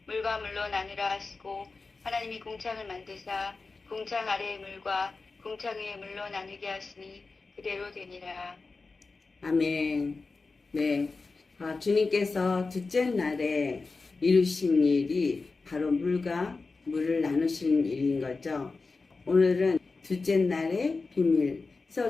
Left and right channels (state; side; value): quieter; right; 4.0 dB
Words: 물과 물로 나누라 하시고 하나님이 궁창을 만드사 궁창 아래의 물과 궁창 위의 물로 나누게 하시니 그대로 되니라. 아멘. 네. 주님께서 둘째 날에 이루신 일이 바로 물과 물을 나누시는 일인 거죠. 오늘은 둘째 날의 비밀.